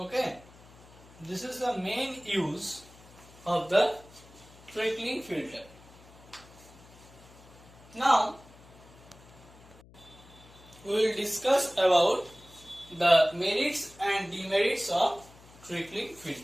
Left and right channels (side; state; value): left; noise; hum, 23 dB below the sound